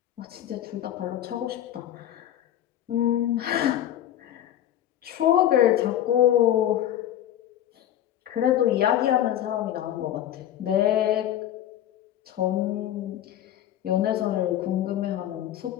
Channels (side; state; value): right; quieter; 11.7 dB